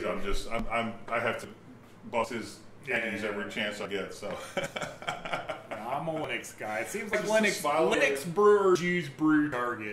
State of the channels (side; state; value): both; identical; correlation 1.00